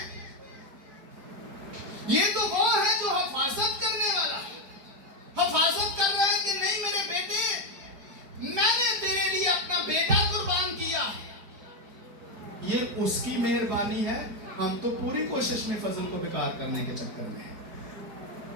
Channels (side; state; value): left; late; 4.8 ms